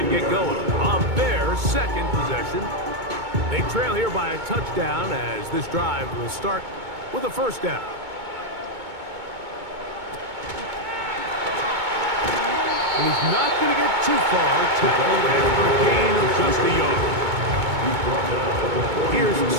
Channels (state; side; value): late; left; 2.2 ms